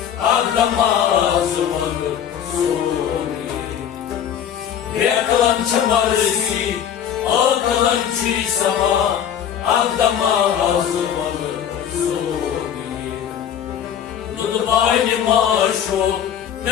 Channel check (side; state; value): right; quieter; 9.2 dB